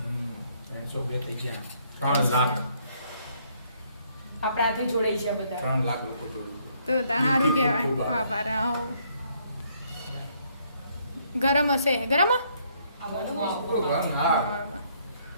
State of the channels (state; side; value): inverted; both; correlation -0.68